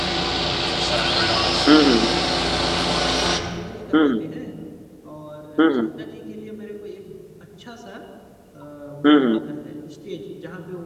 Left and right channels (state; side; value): identical; both; correlation 1.00